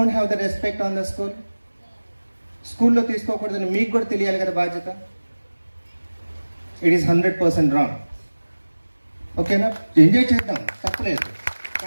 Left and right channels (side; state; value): both; inverted; correlation -1.00